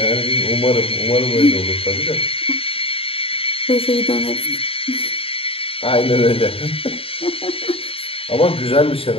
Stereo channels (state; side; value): late; right; 0.27 ms